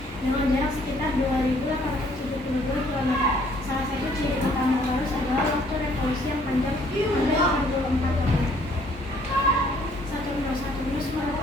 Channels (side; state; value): both; normal; correlation 0.62